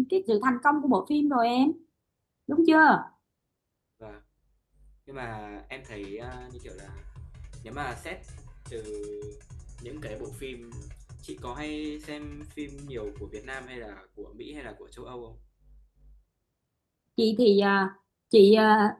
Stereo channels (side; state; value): both; identical; correlation 1.00